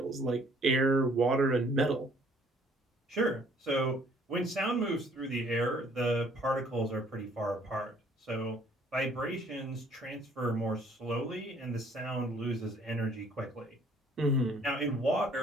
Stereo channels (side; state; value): both; normal; correlation 0.60